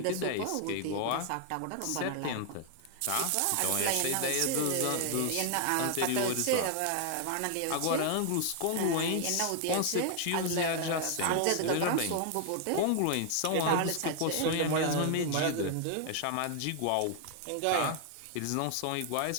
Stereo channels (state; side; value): different; both; correlation 0.00